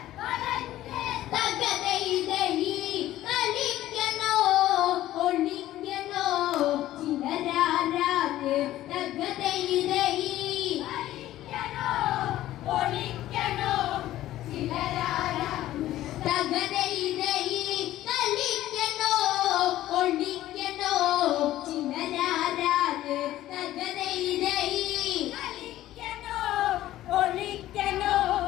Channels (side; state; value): right; quieter; 14.3 dB